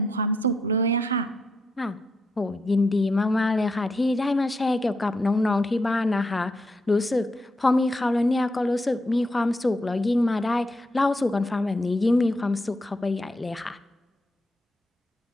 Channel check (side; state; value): both; normal; correlation 0.80